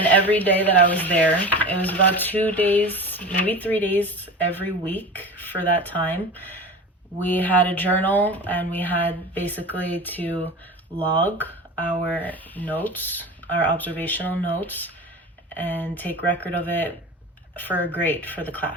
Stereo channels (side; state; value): both; normal; correlation 0.32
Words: every day that I was there, it was about 2 days, maybe 3 days every week for that time. We had a journal, and we had basically to log our notes, our observational notes, and take record of it for a grade for the